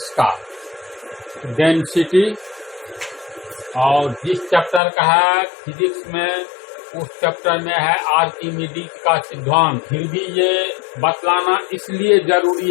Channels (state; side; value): drops out; right; at 4.8 s